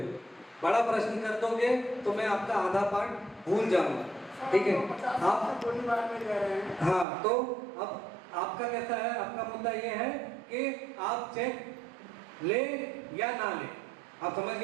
बड़ा प्रश्न कर दोगे तो मैं आपका आधा पार्ट भूल जाऊंगा। ठीक है, आप गोली बार में रह रहे हैं। हाँ, तो अब आपका कैसा है, आपका मुद्दा ये है कि आप चेक ले या ना ले, आप समझ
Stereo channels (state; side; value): drops out; left; at 7.1 s